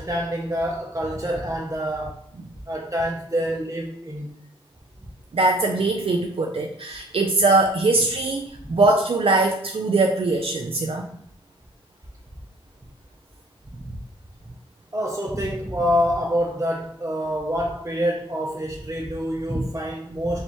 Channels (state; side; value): normal; both; correlation 0.57